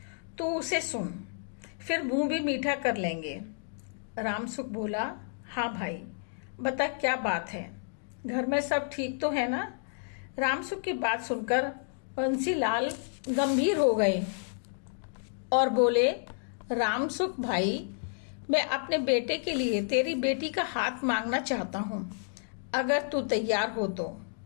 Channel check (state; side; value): silent; right; digital silence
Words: तू उसे सुन, फिर मुंह भी मीठा कर लेंगे। रामसुख बोला, हाँ भाई बता क्या बात है, घर में सब ठीक तो है ना? रामसुख की बात सुनकर बंसीलाल गंभीर हो गए और बोले, रामसुख भाई, मैं अपने बेटे के लिए तेरी बेटी का हाथ मांगना चाहता हूँ, अगर तू तैयार हो तो।